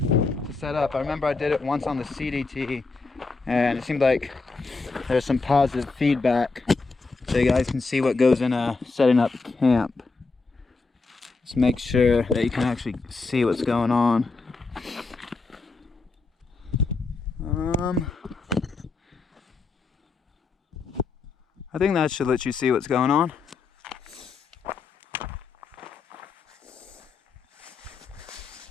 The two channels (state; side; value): quieter; right; 4.1 dB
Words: to set up. I remember I did it once on the CDT, and it seemed like there's some positive feedback, so you guys can see what goes in setting up camp. Just make sure that you can actually see what's going on. I think that should let you see what's going on.